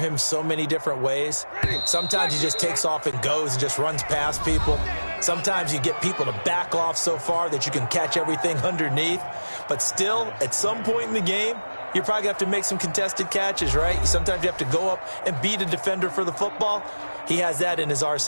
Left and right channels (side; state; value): both; inverted; correlation -1.00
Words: so many different ways. Sometimes he just takes off and goes and just runs past people. Sometimes you get people to back off so far that you can catch everything underneath. But still, at some point in the game, you're probably going to have to make some contested catches, right? Sometimes you have to go up and beat a defender for the football. He has that in his